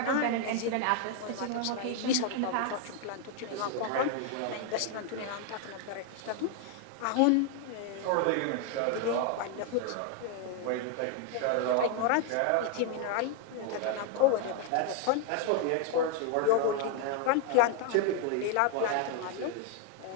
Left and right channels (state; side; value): different; both; correlation 0.00